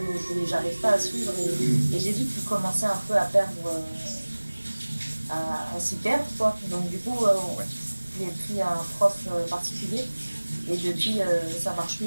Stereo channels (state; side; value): inverted; both; correlation -1.00